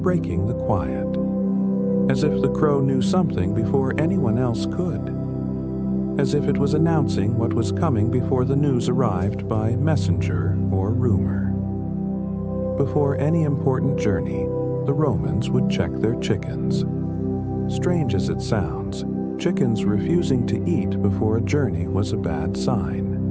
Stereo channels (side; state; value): both; identical; correlation 1.00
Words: breaking the quiet, as if the crow knew something before anyone else could, as if it was announcing what was coming before the news arrived by messenger or rumor. Before any important journey, the Romans would check their chickens. Strange as it sounds, chickens refusing to eat before a journey was a bad sign.